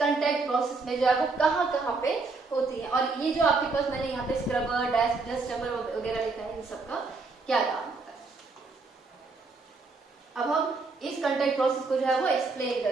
कांटेक्ट प्रोसेस में जो है वो कहां पे होती है, और ये जो आपके पास मैंने यहाँ पे स्क्रबर, डस्ट चैम्बर वगैरह लिखा है, इन सबका क्या काम होता है। अब हम इस कांटेक्ट प्रोसेस को जो है वो एक्सप्लेन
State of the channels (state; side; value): quieter; left; 4.0 dB